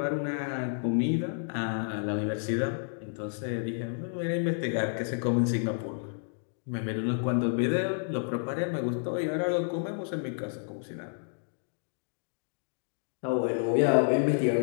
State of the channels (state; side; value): silent; right; digital silence